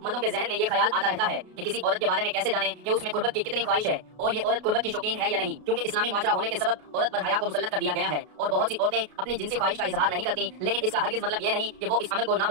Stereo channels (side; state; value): left; late; 33 ms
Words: मर्दों के जहन में ये ख्याल आता रहता है कि किसी औरत के बारे में कैसे जाने कि उसमें कुर्बत की कितनी ख्वाहिश है और ये औरत कुर्बत की शौकीन है या नहीं, क्योंकि इस्लामी माशरा होने के सबब औरत पर हया को मुसल्लत कर दिया गया है और बहुत सी औरतें अपनी जिनसी ख्वाहिश का इजहार नहीं करती। लेकिन इसका हरगिज मतलब ये नहीं कि वो इस अमल को